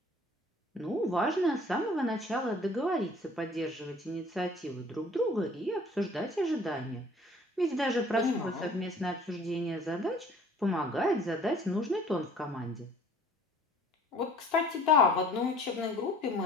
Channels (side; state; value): both; normal; correlation 0.52